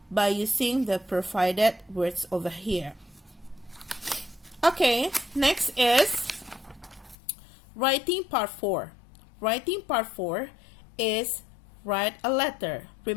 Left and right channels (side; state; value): right; drops out; at 7.2 s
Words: by using the provided words over here. Okay, next is writing part 4. Writing part 4 is write a letter.